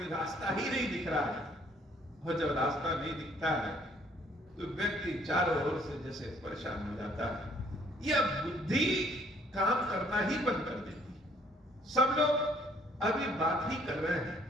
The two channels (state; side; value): normal; both; correlation 0.61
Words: रास्ता ही नहीं दिख रहा है। और जब रास्ता नहीं दिखता है तो व्यक्ति चारों ओर से जैसे परेशान हो जाता है। यह बुद्धि काम करना ही बंद कर देती है। सब लोग अभी बात ही कर रहे हैं,